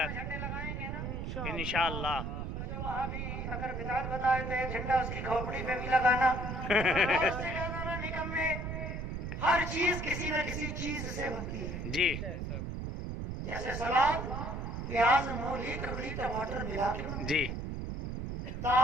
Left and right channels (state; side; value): noise; right; rumble, 4 dB below the sound